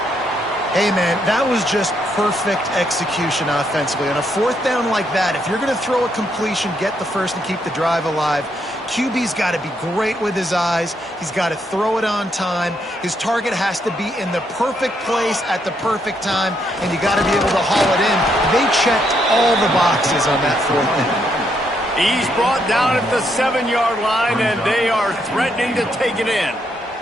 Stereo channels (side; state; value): both; normal; correlation 0.76